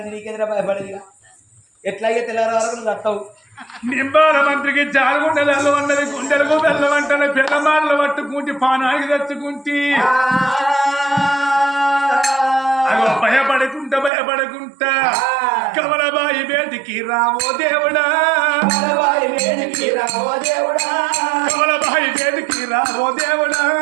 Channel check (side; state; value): left; drops out; at 14.1 s